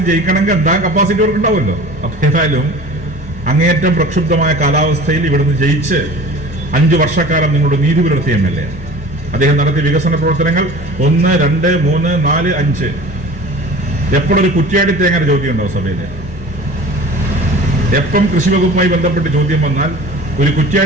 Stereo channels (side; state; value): both; normal; correlation 0.41